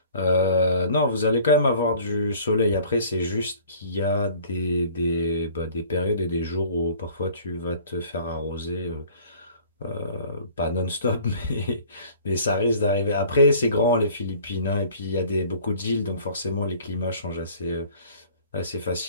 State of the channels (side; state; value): both; inverted; correlation -0.51